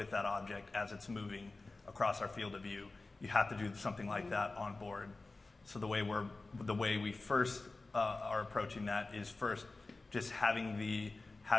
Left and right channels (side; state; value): right; quieter; 3.4 dB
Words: that object as it's moving across our field of view. You have to do something like that on board. So the way we first are approaching that is first just having